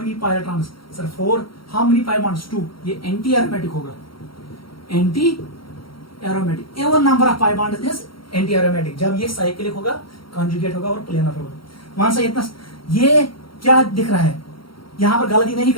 pi electrons? Sir 4। How many pi bonds? 2। ये एंटी एरोमेटिक होगा, anti aromatic. Even number of pi bonds is anti aromatic जब ये साइक्लिक होगा, कॉन्जुगेट होगा और प्लेनर होगा। वहां से इतना ये क्या दिख रहा है? यहां पर गलती नहीं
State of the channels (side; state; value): right; late; 0.74 ms